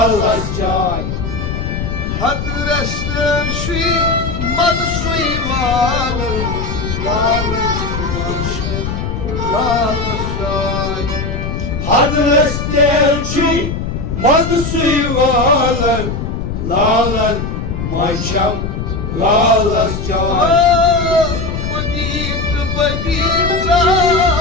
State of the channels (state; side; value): noise; left; rumble, 4 dB below the sound